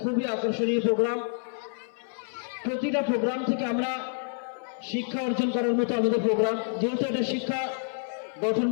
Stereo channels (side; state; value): right; silent; 57 dB below the other